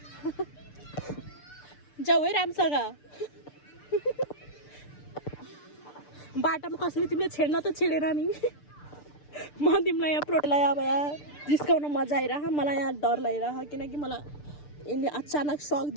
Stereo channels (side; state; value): right; late; 6.8 ms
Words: जाऊ है राम्रोसँग बाटोमा कसैले तिमीले छेड्न त छेडेर नि म तिमीलाई यहाँ प्रोटलाई अब यहाँ जिस्काउन मजा आइरह मलाई यहाँ डर लागिरह किनकि मलाई यसले अचानक सक